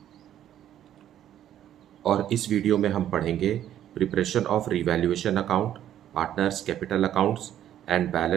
और इस वीडियो में हम पढ़ेंगे preparation of revaluation account, partners capital accounts and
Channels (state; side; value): quieter; left; 11.2 dB